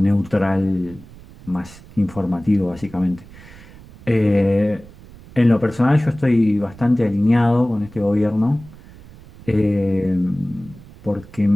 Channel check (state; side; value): noise; right; rumble, 21 dB below the sound